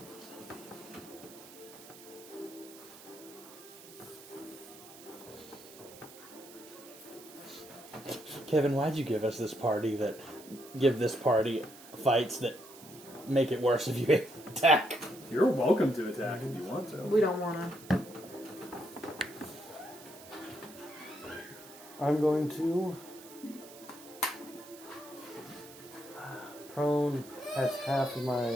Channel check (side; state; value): right; noise; hiss, 18 dB below the sound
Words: Kevin, why'd you give us this party fights that make it worse if you attack? You're welcome to attack if you want to. We don't want to. I'm going to prone. That's half of